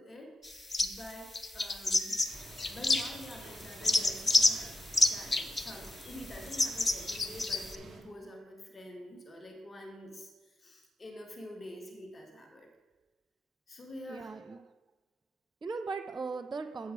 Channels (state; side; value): normal; both; correlation 0.87